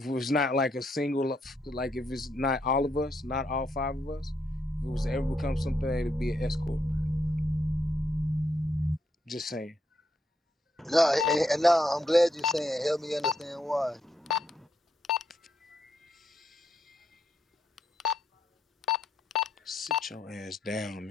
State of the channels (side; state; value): both; normal; correlation 0.77